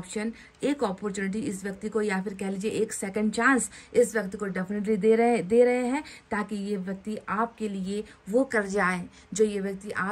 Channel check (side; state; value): both; identical; correlation 1.00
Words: एक अपॉर्चुनिटी इस व्यक्ति को, या फिर कह लीजिए एक सेकंड चांस इस व्यक्ति को डेफिनेटली दे रहे हैं, ताकि ये व्यक्ति आपके लिए वो कर जाए जो ये व्यक्ति